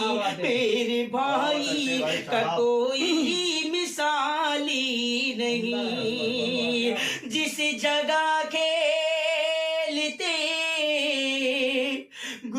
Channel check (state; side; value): identical; both; correlation 1.00